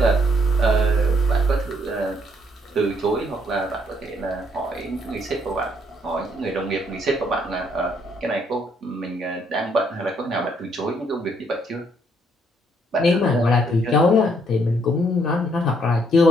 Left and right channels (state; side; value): normal; both; correlation 0.69